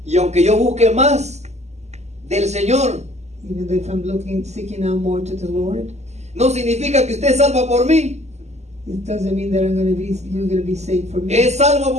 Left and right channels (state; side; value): late; left; 0.33 ms